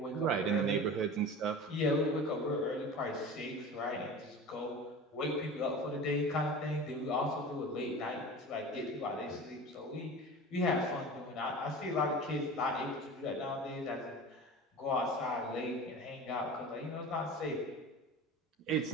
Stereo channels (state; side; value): normal; both; correlation 0.34